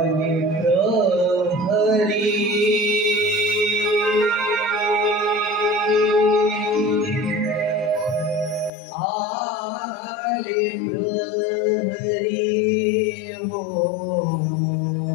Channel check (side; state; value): right; drops out; at 8.7 s